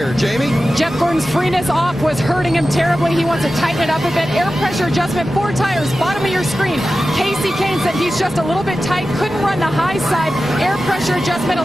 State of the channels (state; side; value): normal; both; correlation 0.94